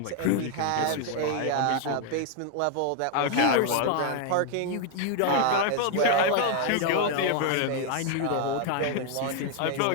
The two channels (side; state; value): both; different; correlation 0.00